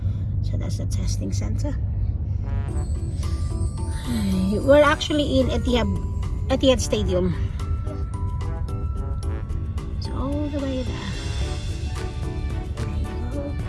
So, that's the testing center. We're actually in Etihad Stadium. So, all the way there. There you go.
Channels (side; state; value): both; identical; correlation 1.00